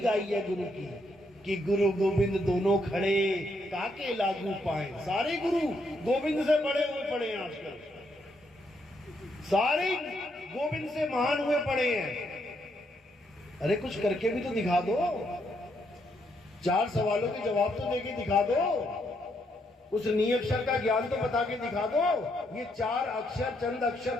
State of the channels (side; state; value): both; normal; correlation 0.76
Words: गाई है गुरु की कि गुरु गोविंद दोनों खड़े काके लागू पाए। सारे गुरु गोविंद से बड़े हुए पड़े हैं आजकल, सारे गोविंद से महान हुए पड़े हैं। अरे कुछ करके भी तो दिखा दो, 4 सवालों के जवाब तो देके दिखा दो, उस नियक्षर का ज्ञान तो बता के दिखा दो। ये 4 अक्षर, चंद